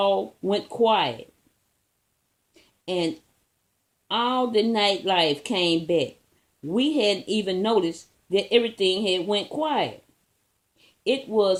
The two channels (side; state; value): both; identical; correlation 1.00